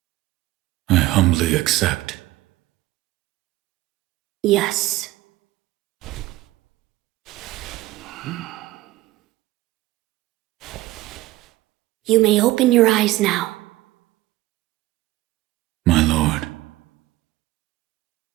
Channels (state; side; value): quieter; left; 17.5 dB